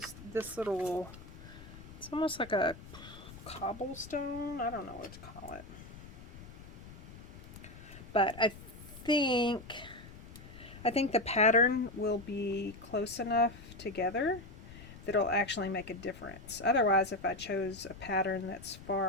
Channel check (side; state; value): left; noise; rumble, 16 dB below the sound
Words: this little, it's almost like a cobblestone. I don't know what to call it. But I think the pattern will be close enough together that it'll actually make a difference. Otherwise, if I chose a pattern that's